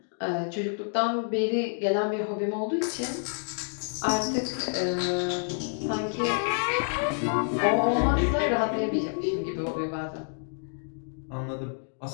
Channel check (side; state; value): right; silent; digital silence